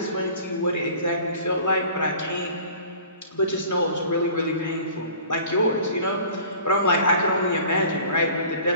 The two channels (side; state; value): both; inverted; correlation -0.46